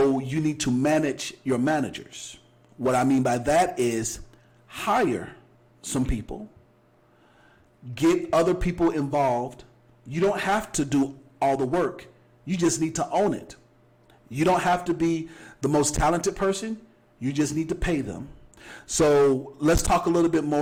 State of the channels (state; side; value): identical; both; correlation 1.00